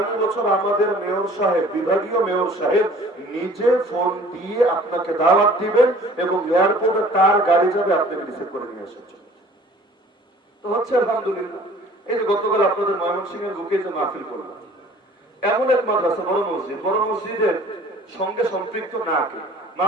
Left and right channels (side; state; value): both; normal; correlation 0.50